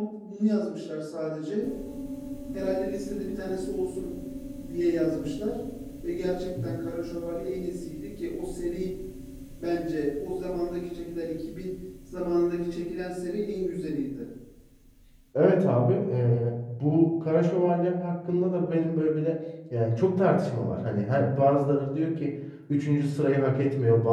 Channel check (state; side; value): identical; both; correlation 1.00